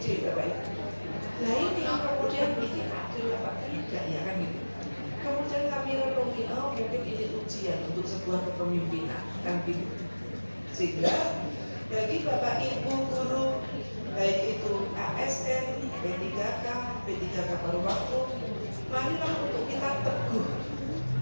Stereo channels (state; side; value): inverted; both; correlation -1.00